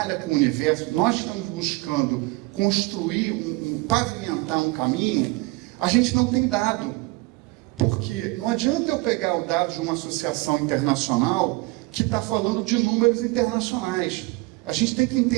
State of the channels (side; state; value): left; quieter; 23.6 dB